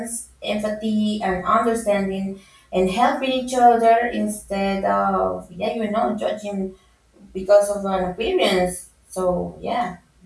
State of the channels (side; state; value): both; identical; correlation 1.00